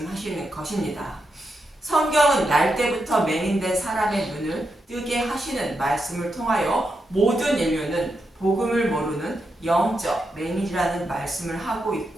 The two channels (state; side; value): normal; both; correlation 0.85